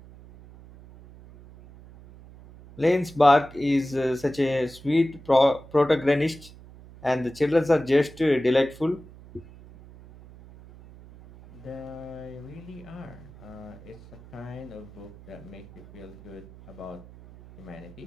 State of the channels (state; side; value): noise; right; hum, 20 dB below the sound